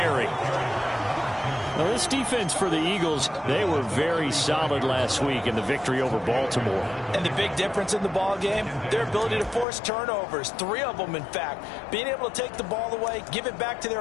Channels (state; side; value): drops out; right; at 9.7 s